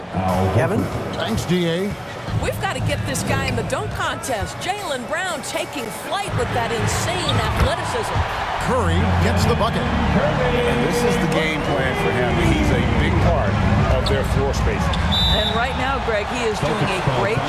Kevin? Thanks, D.A. We've got to get this guy in the dunk contest. Jaylen Brown taking flight with that insane athleticism. Curry gets the bucket. And this is the game plan for him. He's a big part of their floor spacing. And right now, Greg, he is doing a great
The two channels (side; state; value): both; identical; correlation 1.00